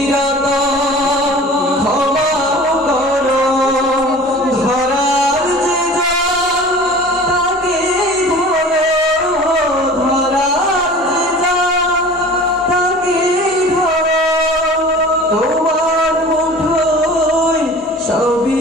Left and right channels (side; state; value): both; normal; correlation 0.41